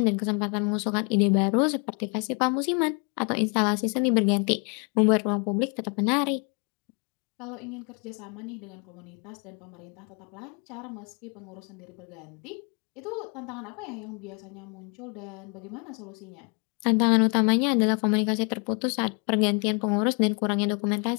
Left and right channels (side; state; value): right; quieter; 35.5 dB